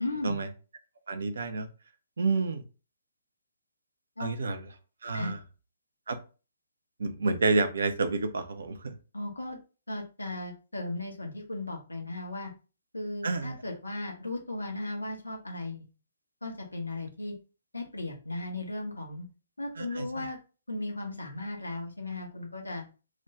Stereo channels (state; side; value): inverted; both; correlation -0.80